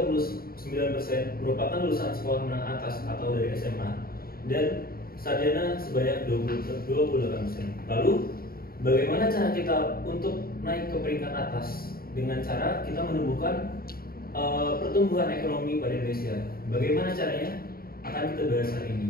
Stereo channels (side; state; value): right; late; 0.43 ms